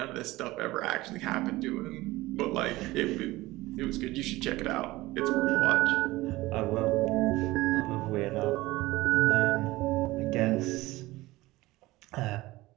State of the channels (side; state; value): left; quieter; 19.0 dB